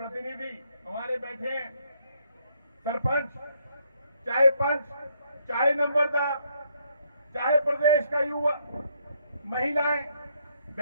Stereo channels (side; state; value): both; inverted; correlation -0.72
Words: हमारे बैठे हैं, सरपंच, चाहे पंच, चाहे नंबरदार, चाहे प्रदेश का युवा, महिलाएं,